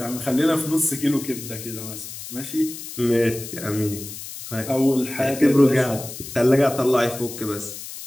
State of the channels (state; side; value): noise; left; hiss, 11 dB below the sound